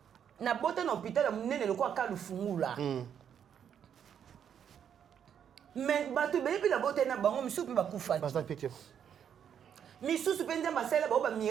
Na bota na hôpital munene loko akalu fungula. Mais bato bebi la bota na bango misusu ba kufa. Misusu pe Nzamba sala ba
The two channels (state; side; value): quieter; left; 8.6 dB